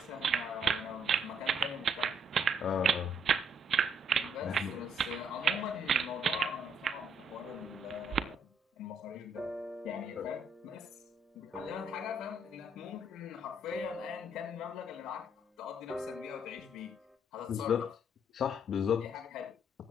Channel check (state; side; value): normal; both; correlation 0.68